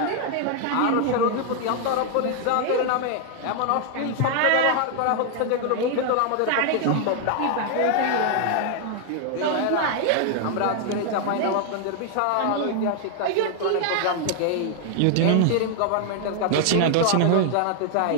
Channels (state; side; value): different; both; correlation 0.00